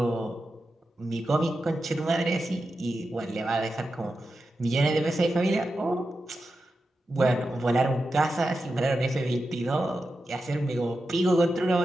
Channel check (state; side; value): normal; both; correlation 0.90